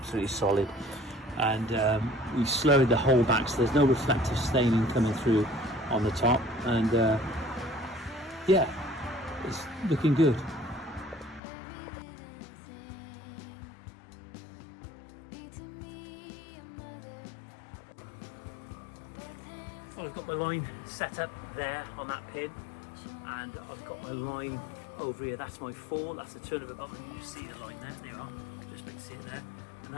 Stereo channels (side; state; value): right; drops out; at 11.4 s